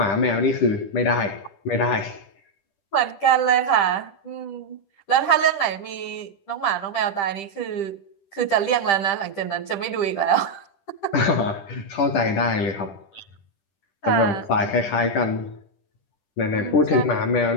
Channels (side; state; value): right; late; 10 ms